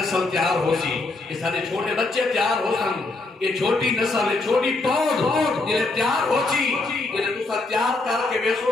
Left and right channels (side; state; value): right; quieter; 3.3 dB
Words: تیار ہو سی یہ سارے چھوٹے بچے تیار ہو سن یہ چھوٹی نسل یہ چھوٹی پود یہ تیار ہو سی یہ دوسرا تیار کر کے